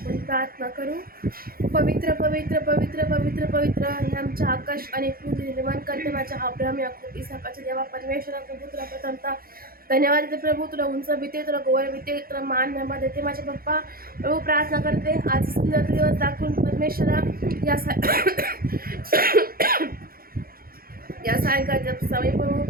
प्रार्थना करू. पवित्र पवित्र पवित्र पवित्र पवित्र हे आमच्या आकाश आणि पृथ्वी निर्माण करते माझ्या अब्राहम याकूब इसाकाच्या देवा परमेश्वरा प्रभू तुला प्रथमता धन्यवाद देते प्रभू. तुला उंच भीते, तुला गोवर भीते, तुला मान नेमा देते माझे पप्पा. प्रभू प्रार्थना करते आज सुंदर दिवस दाखवून परमेश्वरा या सायंकाळच्या समय प्रभू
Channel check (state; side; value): late; left; 0.43 ms